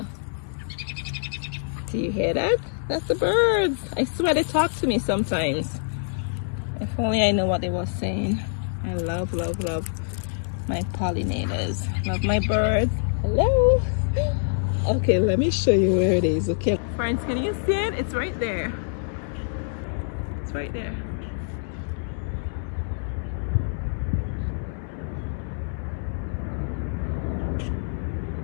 Do you hear that? That's the birds. I swear they talk to me sometimes. If only I know what they were saying. I love, love, love my pollinators. Love my birds. Hello. Okay, let me show you where it is. Okay, friends, can you see it? It's right there. It's right there.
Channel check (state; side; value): silent; right; 61 dB below the other